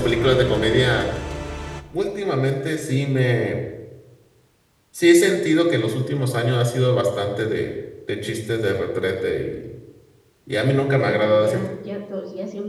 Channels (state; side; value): identical; both; correlation 1.00